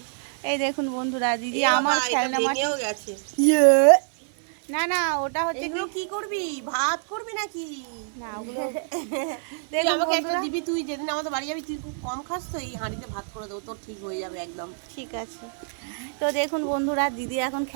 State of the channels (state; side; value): silent; left; 58 dB below the other